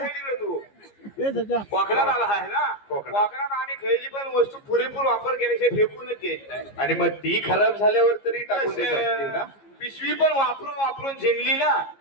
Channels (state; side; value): late; right; 15 ms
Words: तिकडे तू कोकणात आला आहे ना कोकणात. कोकणात आम्ही खैली पण वस्तू पुरेपूर वापर केल्याशिवाय फेकूनच देत नाही आणि मग ती खराब झाल्यावर तरी टाकून देत असतील ना पिशवी पण वापरून वापरून झिंगली ना